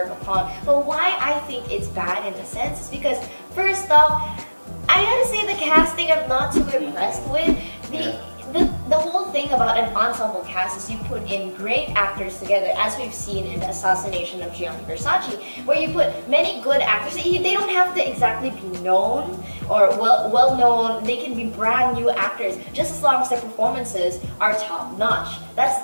upon. But why I think it's bad in a sense is because first off, I gotta say the casting I'm not too impressed with. The whole thing about an ensemble cast is you put in great actors together, as we've seen in the Assassination of Gianni Versace, where you put many good actors. They don't have to exactly be known or well known. They can be brand new actors, just as long as their performances are top notch. That's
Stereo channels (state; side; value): inverted; both; correlation -1.00